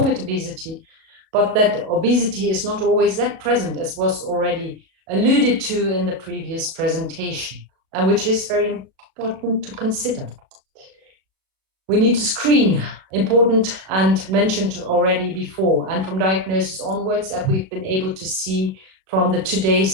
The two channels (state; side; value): late; left; 37 ms